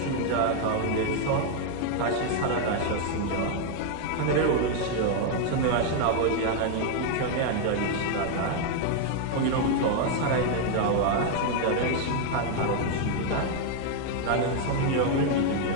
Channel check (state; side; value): different; both; correlation 0.00